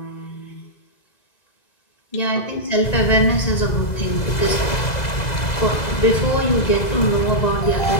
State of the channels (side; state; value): right; late; 2.0 ms